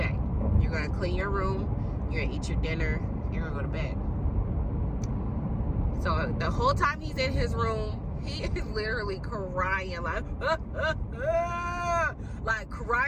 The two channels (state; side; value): identical; both; correlation 1.00